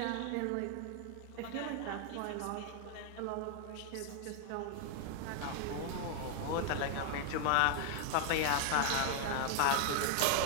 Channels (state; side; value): different; both; correlation 0.00